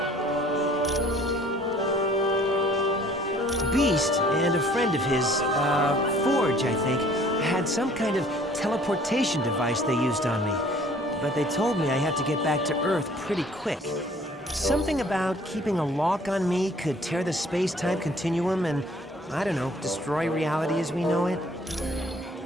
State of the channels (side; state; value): both; normal; correlation 0.55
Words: Beast and a friend of his, Forge, I think, had some kind of teleportation device they used on me. But they told me I had to get back to Earth pretty quick. Something about keeping a lock on me could tear the space-time continuum and, I don't know, destroy reality as we know it.